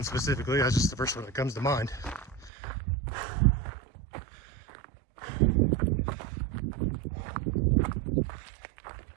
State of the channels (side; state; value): left; drops out; at 2.5 s